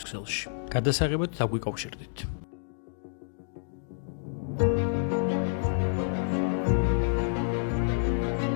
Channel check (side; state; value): right; silent; digital silence